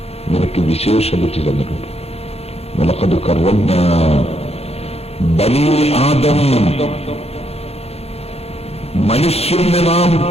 നിനക്ക് വിശേഷ ബുദ്ധി തന്നിട്ടുണ്ട്. വലഖദ് കർറംനാ ബനീ ആദം, മനുഷ്യനെ നാം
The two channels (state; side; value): late; right; 0.29 ms